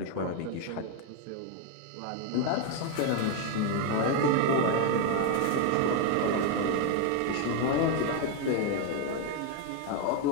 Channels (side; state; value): both; different; correlation 0.01